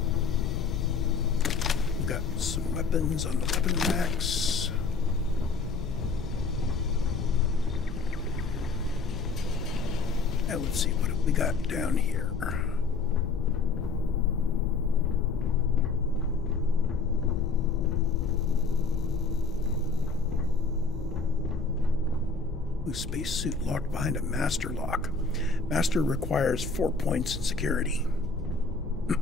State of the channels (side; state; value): right; quieter; 4.4 dB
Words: We've got some weapons on the weapon racks. And let's see, what have we got down here? Spacesuit locked behind a master lock. Master requires 4 points in security.